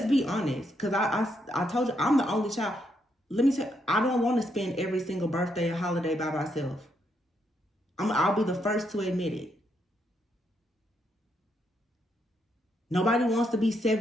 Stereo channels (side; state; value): both; normal; correlation 0.77